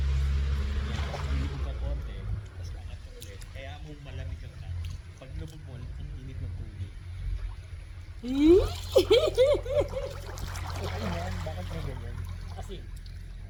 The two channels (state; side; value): identical; both; correlation 1.00